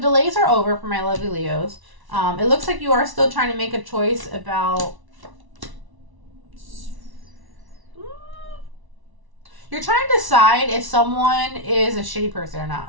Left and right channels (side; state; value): left; late; 1.1 ms